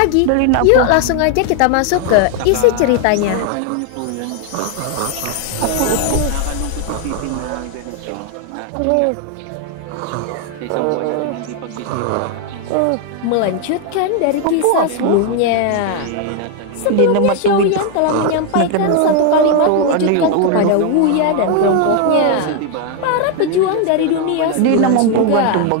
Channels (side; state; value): both; different; correlation 0.01